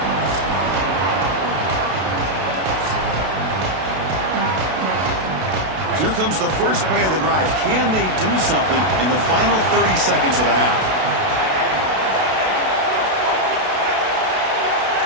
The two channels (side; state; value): left; late; 32 ms